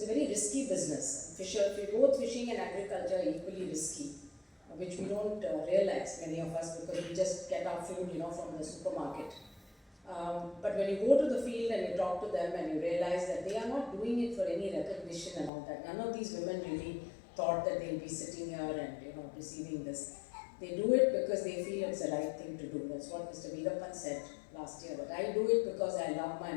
a very risky business. Both fishing and agriculture are equally risky, which we don't realize, many of us, because we just get our food, from the supermarket. But when you go to the field and you talk to them and you realize that they are not doing it for any recognition and all that. None of these women really thought that they'll be sitting here and receiving this. They do it because they feel it's the right thing to do. That's what Mr. Veerapan said last year. But I do it because I love my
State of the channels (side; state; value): right; drops out; at 15.5 s